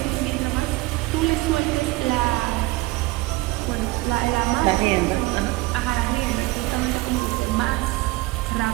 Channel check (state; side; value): quieter; left; 20.7 dB